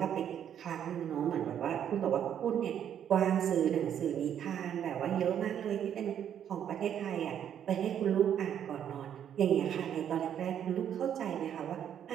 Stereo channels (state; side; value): quieter; left; 9.4 dB